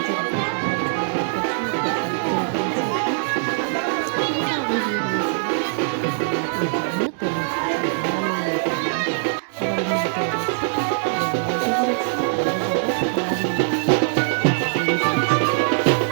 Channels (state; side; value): silent; left; digital silence